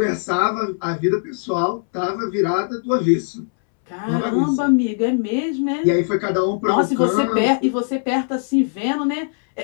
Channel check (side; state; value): right; silent; 66 dB below the other